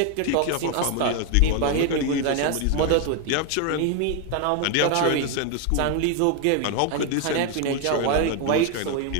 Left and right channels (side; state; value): both; different; correlation 0.01